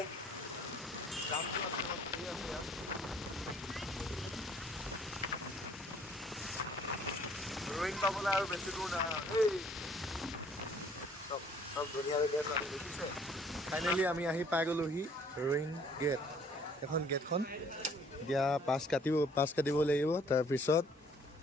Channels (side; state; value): both; normal; correlation 0.59